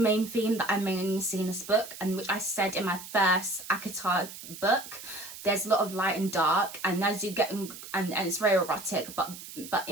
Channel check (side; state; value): right; noise; hiss, 13 dB below the sound